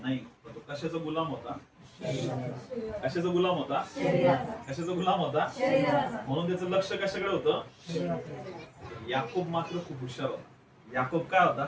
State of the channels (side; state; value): both; identical; correlation 1.00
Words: नाही. तो कशाचा गुलाम होता? कशाचा गुलाम होता? कशाचा गुलाम होता? म्हणून त्याचं लक्ष कशाकडे होतं? याकूब मात्र खूप हुशार होता. याकूब काय होता?